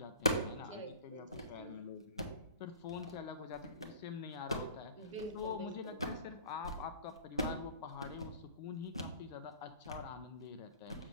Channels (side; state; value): both; inverted; correlation -0.42